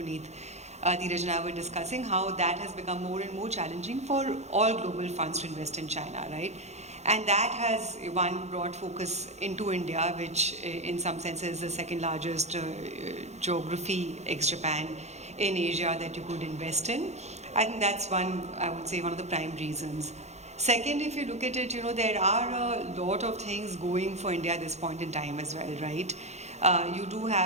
Dheeraj and I were discussing how that has become more and more challenging for all global funds to invest in China, right? And that has brought focus into India, which in some senses is the second largest geography ex-Japan in Asia that you could invest in. I think that's I would say one of the prime reasons. Second, if you look at it, there are a lot of things going for India at this point in time as well, right? You do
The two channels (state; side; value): late; left; 0.32 ms